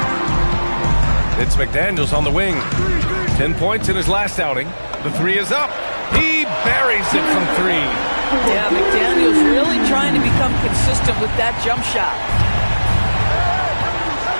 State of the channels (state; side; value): inverted; both; correlation -1.00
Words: It's McDaniels on the wing. 10 points in his last outing. The 3 is up. He buries it from 3. Yeah, McDaniels really trying to become consistent with that jump shot.